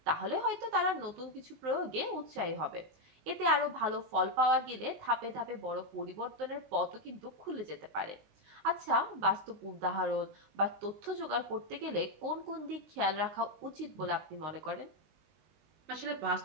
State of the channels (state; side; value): late; left; 19 ms